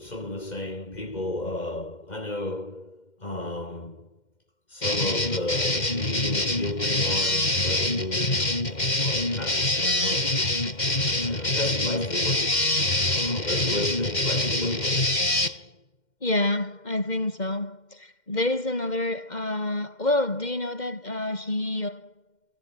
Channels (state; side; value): late; right; 2.1 ms